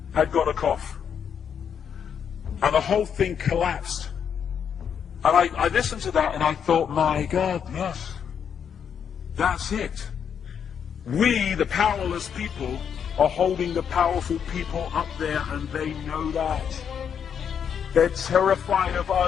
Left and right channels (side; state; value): right; quieter; 7.8 dB